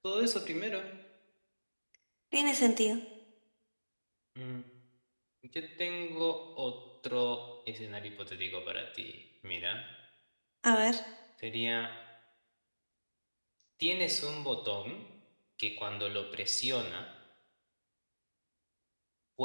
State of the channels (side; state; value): both; inverted; correlation -1.00